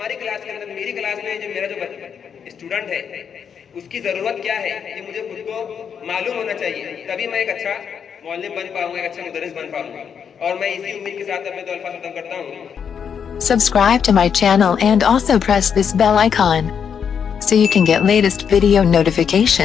क्लास के अंदर, मेरी क्लास में जो मेरा जो स्टूडेंट है, उसकी जरूरत क्या है, ये मुझे खुद को मालूम होना चाहिए, तभी मैं एक अच्छा मुअल्लिम बन पाऊंगा, एक अच्छा मुदर्रिस बन पाऊंगा। और मैं इसी उम्मीद के साथ अपने 2 अल्फाज खत्म करता हूँ। Subscribe to my channel and also press this bell icon so you can get latest video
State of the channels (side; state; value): right; quieter; 7.3 dB